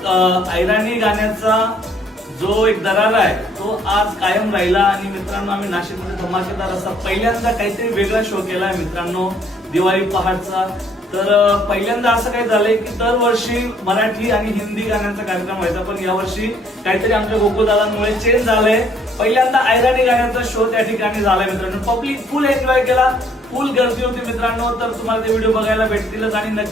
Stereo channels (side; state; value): both; normal; correlation 0.63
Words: ऐराणी गाण्याचा जो एक दरार आहे तो आज कायम राहिला. आणि मित्रांनो, आम्ही नाशिकमध्ये धमाकेदार असा पहिल्यांदा काहीतरी वेगळा शो केलाय मित्रांनो, दिवाळी पहाटचा. तर पहिल्यांदा असं काही झालंय की दरवर्षी मराठी आणि हिंदी गाण्यांचा कार्यक्रम व्हायचा, पण यावर्षी काहीतरी आमच्या गोकुळदादांमुळे चेंज झालंय. पहिल्यांदा ऐराणी गाण्याचा शो त्या ठिकाणी झालाय मित्रांनो. पब्लिक फुल एन्जॉय केला, फुल गर्दी होती मित्रांनो. तर तुम्हाला ते व्हिडिओ बघायला भेटतीलच आणि